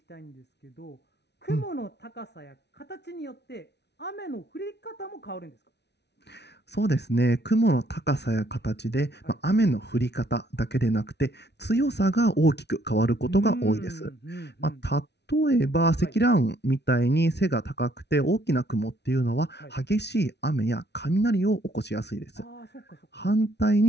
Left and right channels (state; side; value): late; right; 0.50 ms